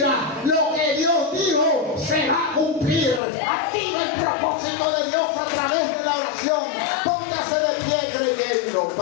Lo que Dios dijo se va a cumplir. Activa el propósito de Dios a través de la oración. Póngase de pie creyendo.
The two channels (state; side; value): drops out; right; at 3.2 s